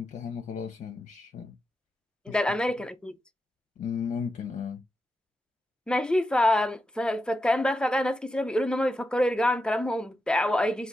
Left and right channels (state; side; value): normal; both; correlation 0.88